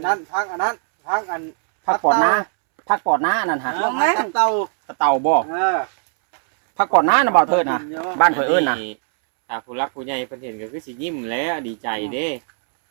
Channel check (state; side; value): silent; left; 66 dB below the other